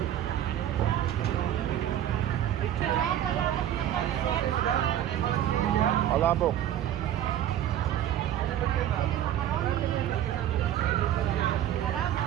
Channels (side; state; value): left; quieter; 11.3 dB